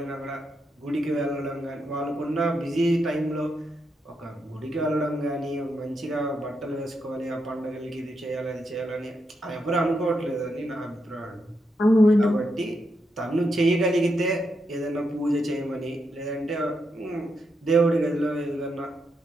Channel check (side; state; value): both; normal; correlation 0.82